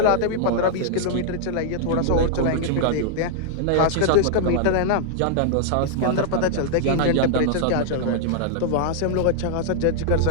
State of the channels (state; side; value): different; both; correlation -0.01